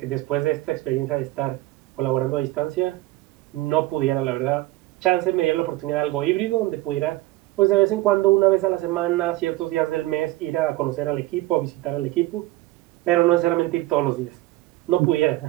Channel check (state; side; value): quieter; left; 18.3 dB